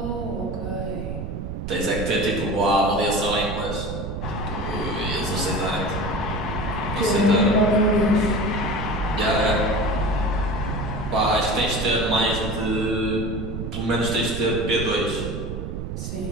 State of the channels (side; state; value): right; noise; rumble, 5 dB below the sound